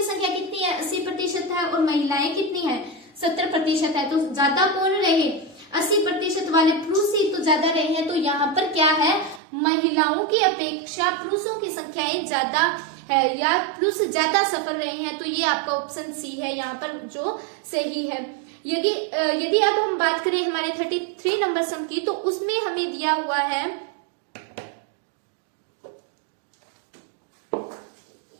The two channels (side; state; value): left; drops out; at 9.4 s